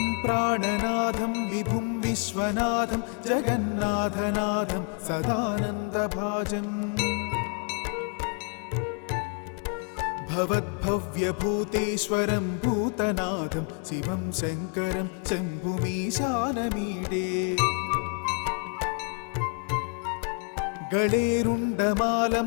प्राणनाथं विभुं विश्वनाथं जगन्नाथनाथं सदानन्दभाजम् भवद्भव्यभूतेश्वरं भूतनाथं शिवं शङ्करं शम्भुमीशानमीडे।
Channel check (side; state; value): right; quieter; 38.1 dB